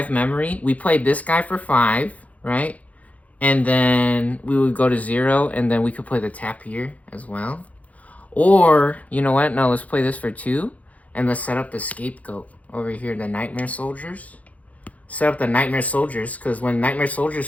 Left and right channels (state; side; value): late; right; 0.070 ms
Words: memory. We played this guy for 5, right? And then we would go to 0, and then we could play the tap here as well. Or, you know what? No, let's play this for 2, and let's set up the scapegoat over here, the Nightmare Soldiers. Set up the Nightmare Soldiers, because when Nightmare